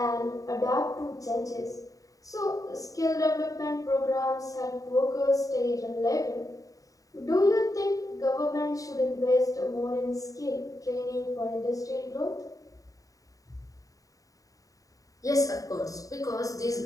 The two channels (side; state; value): right; late; 0.17 ms